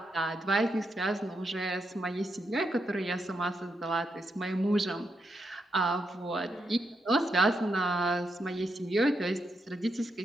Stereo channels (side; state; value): both; normal; correlation 0.82